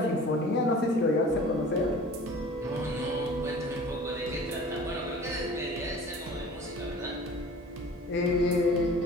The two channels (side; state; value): both; normal; correlation 0.43